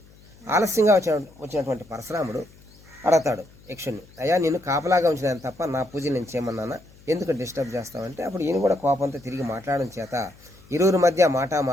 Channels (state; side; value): noise; left; hum, 25 dB below the sound